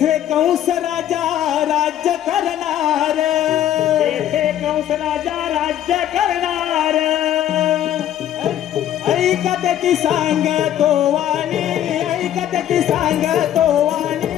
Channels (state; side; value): quieter; right; 11.3 dB